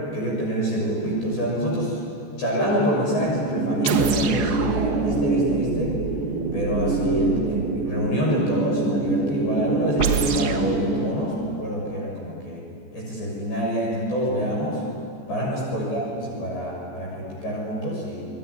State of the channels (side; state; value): right; late; 14 ms